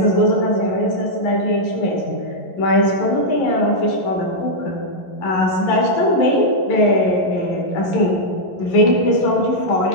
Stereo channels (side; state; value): right; late; 11 ms